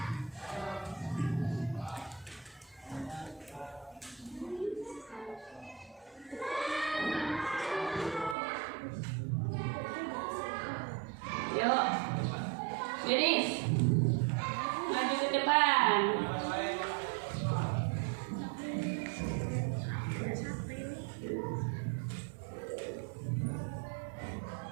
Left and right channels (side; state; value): left; drops out; at 8.3 s